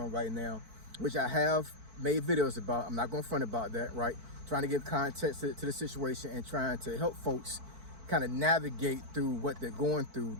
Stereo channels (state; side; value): late; left; 4.5 ms